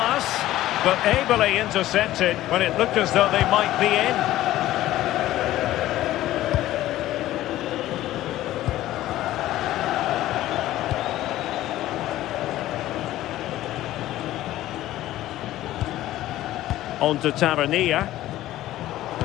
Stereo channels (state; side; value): quieter; right; 14.8 dB